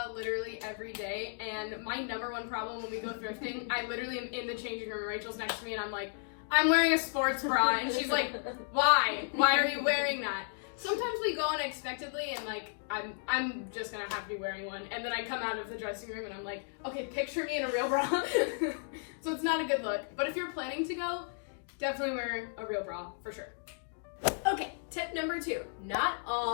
literally every day, and my number one problem when we go thrifting, I literally am in the changing room, Rachel's next to me, and I'm like, I'm wearing a sports bra, and she's like, why? Why are you wearing that? Sometimes we go unexpectedly, and like, I'm just gonna have to be wearing one, and then I come out of the dressing room, and I'm like, okay, picture me in a real bra. So it's not a good look, but if you're planning to go, definitely wear a real bra, for sure. Okay, tip number 2. Not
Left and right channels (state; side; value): silent; right; digital silence